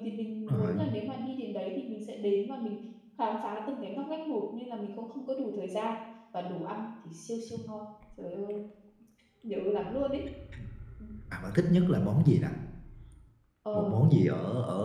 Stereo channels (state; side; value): identical; both; correlation 1.00